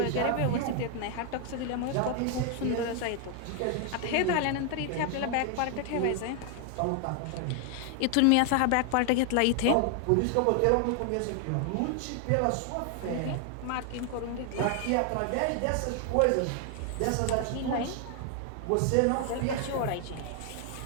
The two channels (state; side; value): different; both; correlation 0.00